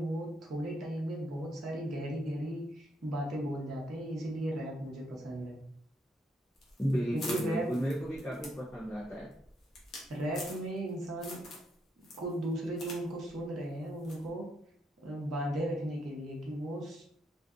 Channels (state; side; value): normal; both; correlation 0.76